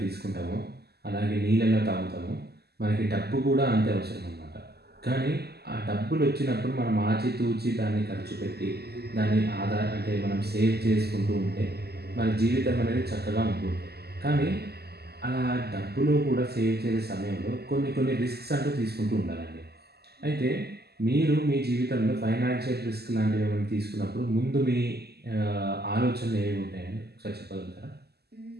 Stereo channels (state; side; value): late; left; 0.46 ms